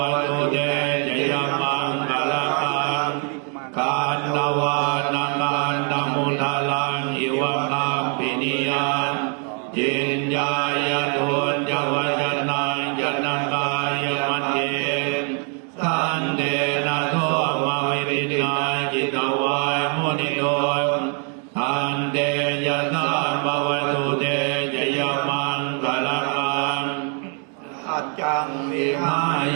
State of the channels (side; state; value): left; quieter; 39.8 dB